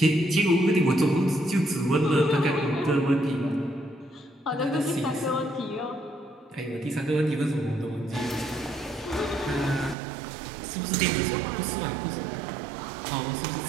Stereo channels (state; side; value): drops out; left; at 10.0 s